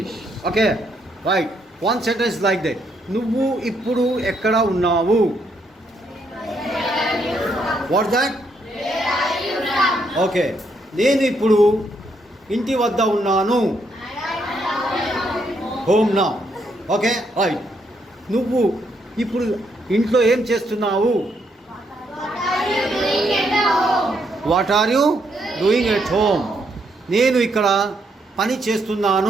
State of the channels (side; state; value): both; normal; correlation 0.75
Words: Okay, right. One sentence like that. నువ్వు ఇప్పుడు ఎక్కడ ఉన్నావు? What's that? Okay, నేను ఇప్పుడు ఇంటి వద్ద ఉన్నాను. Home now. Okay, right. నువ్వు ఇప్పుడు ఇంట్లో ఏం చేస్తున్నావు? What are you doing at home? నేను ఇక్కడ పని